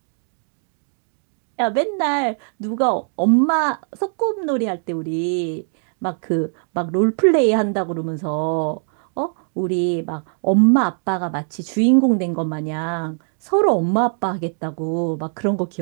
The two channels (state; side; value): silent; left; 57 dB below the other